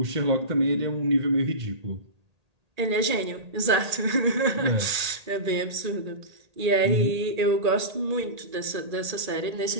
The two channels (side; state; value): left; late; 1.8 ms